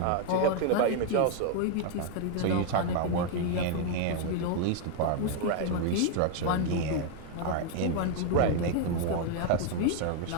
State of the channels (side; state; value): both; different; correlation 0.00